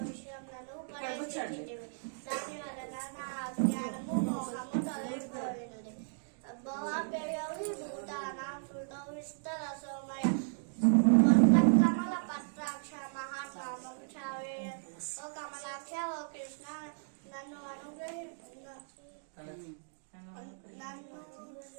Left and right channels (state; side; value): silent; left; digital silence